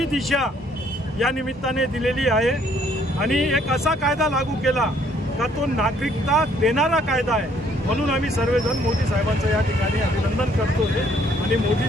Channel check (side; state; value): both; normal; correlation 0.64